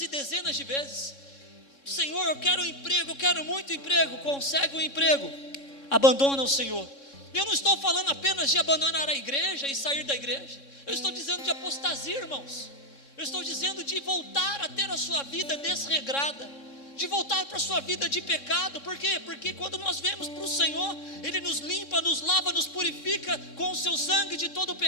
dezenas de vezes. Senhor, eu quero um emprego, eu quero muito emprego. Consegue um emprego, abandona o Senhor. Eu não estou falando apenas de abandonar a igreja e sair da igreja. Eu estou dizendo de apostasia, irmãos. Eu estou dizendo de voltar a ter a sua vida desregrada, de voltar para a sua vida de pecado. Por quê? Porque quando nós vemos para o Senhor, Ele nos limpa, nos lava, nos purifica com o seu sangue de todo o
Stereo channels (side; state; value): right; late; 3.6 ms